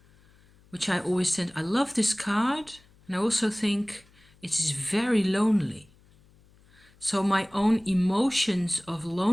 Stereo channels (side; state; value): left; noise; hum, 29 dB below the sound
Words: which I always tend, I love this card, and I also think it is very lonely. So my own emotions of